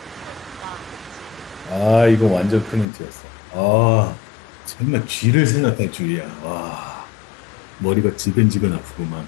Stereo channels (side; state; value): right; drops out; at 2.9 s